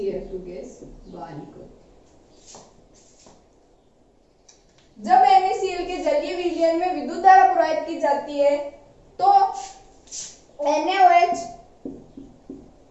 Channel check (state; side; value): identical; both; correlation 1.00